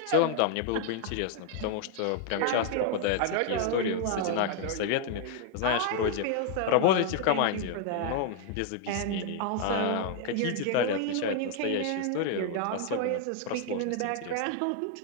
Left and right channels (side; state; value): both; different; correlation 0.00